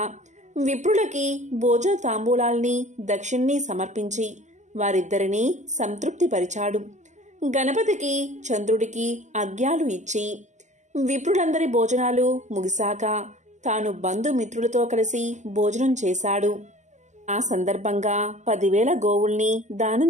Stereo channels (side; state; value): left; late; 0.34 ms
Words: విప్రులకి భోజ తాంబూలాల్ని దక్షిణ్ణి సమర్పించి వారిద్దరినీ సంతృప్తిపరిచాడు. గణపతికి చంద్రుడికి అర్ఘ్యాలు ఇచ్చి విప్రులందరి భోజనాలు ముగిశాక తాను బంధుమిత్రులతో కలిసి భోజనం చేశాడు. ఆ సందర్భంగా 10,000 గోవుల్ని